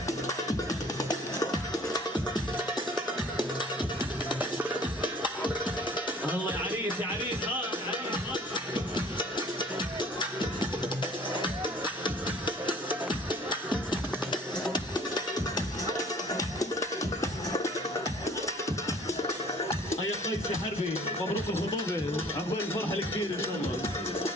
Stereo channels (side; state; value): both; normal; correlation 0.52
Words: الله يا عريس يا عريس. يا قيس يا حربي مبروك الخطوبة، عقبال الفرحة الكبيرة إن شاء الله.